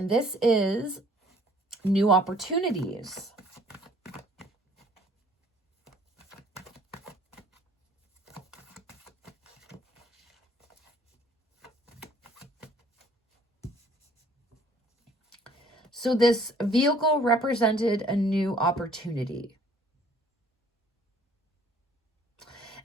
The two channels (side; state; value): both; normal; correlation 0.57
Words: this is new opportunities. So this vehicle represented a new opportunity.